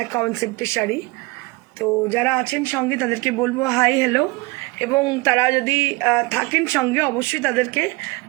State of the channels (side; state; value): left; quieter; 24.5 dB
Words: কনসেপ্টের শাড়ি। তো যারা আছেন সঙ্গে তাদেরকে বলবো হাই হ্যালো, এবং তারা যদি থাকেন সঙ্গে অবশ্যই তাদেরকে